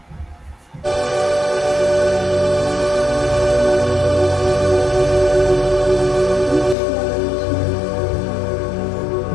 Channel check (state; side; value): drops out; right; at 6.8 s